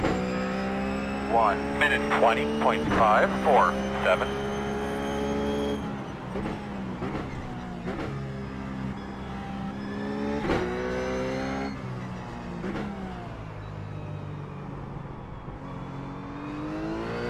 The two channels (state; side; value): identical; both; correlation 1.00